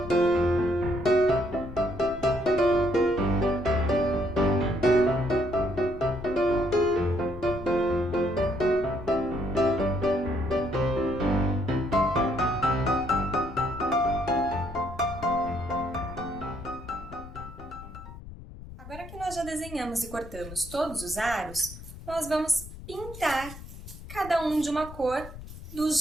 Agora que nós já desenhamos e cortamos todos os aros, nós vamos pintar cada um de uma cor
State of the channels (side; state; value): left; noise; rumble, 14 dB below the sound